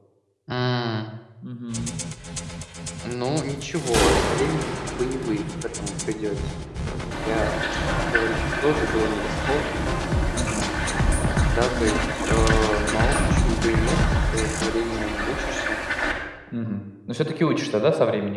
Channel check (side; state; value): both; identical; correlation 1.00